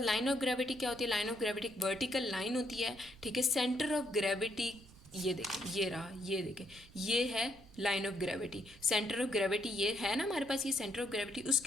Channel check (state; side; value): noise; right; rumble, 22 dB below the sound